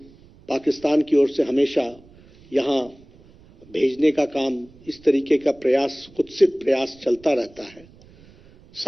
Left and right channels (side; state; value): right; noise; rumble, 26 dB below the sound